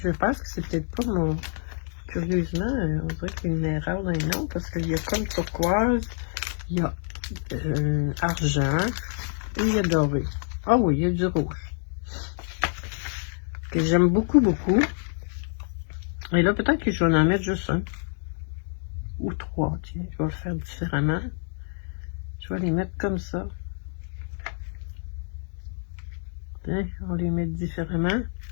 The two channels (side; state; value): right; silent; digital silence